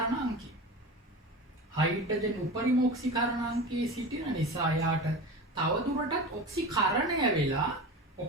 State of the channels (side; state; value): both; normal; correlation 0.30